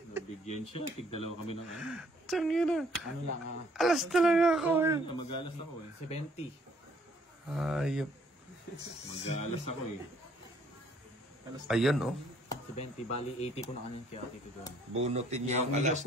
Nabigyan siya. Tig-dalawa kami ng ano. Tangina. Ano lang, Alas talaga ako eh. Mag-alas ako eh. 70. Ayop. Mag-alas ako eh. Ayun oh. 70, bali 80 ko na kanina kaya titigan. Bunutin niya yung alas,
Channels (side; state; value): both; normal; correlation 0.63